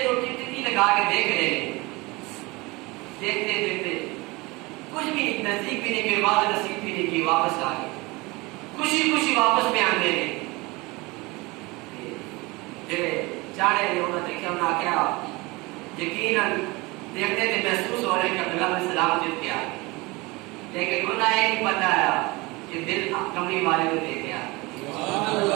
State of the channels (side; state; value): left; quieter; 23.8 dB